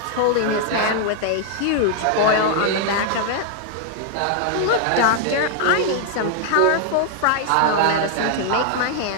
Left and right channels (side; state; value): both; different; correlation 0.00